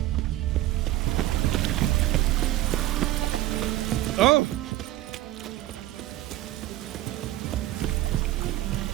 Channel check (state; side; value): quieter; left; 15.2 dB